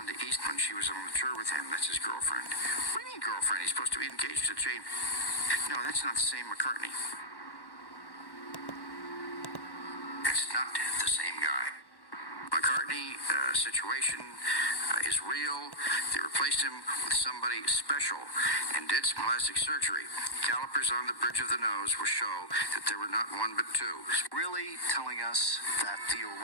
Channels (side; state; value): right; late; 1.1 ms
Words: Eastman. She was on the tour with him. That's his girlfriend. What do you mean girlfriend? He's supposed to be engaged to Jane. No, that's not the same McCartney. It's not the same guy. McCartney situation is real. They replaced him with somebody special and did some plastic surgery. Calipers on the bridge of the nose will show that there were not one but two. Really telling us that the